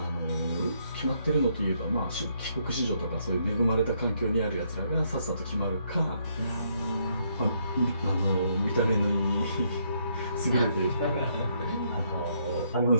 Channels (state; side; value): inverted; both; correlation -0.73